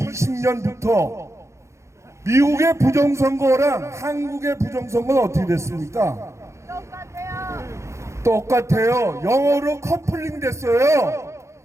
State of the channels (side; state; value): left; late; 0.14 ms